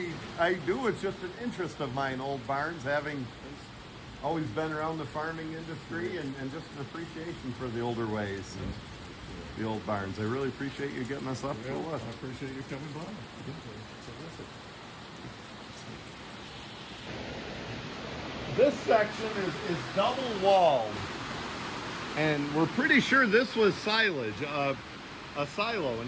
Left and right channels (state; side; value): identical; both; correlation 1.00